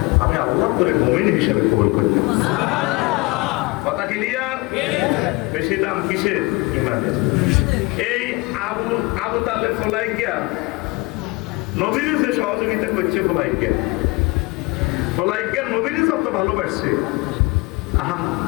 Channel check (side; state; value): right; quieter; 25.0 dB